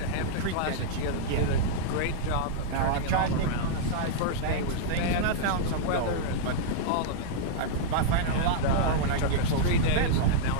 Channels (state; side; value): different; both; correlation -0.02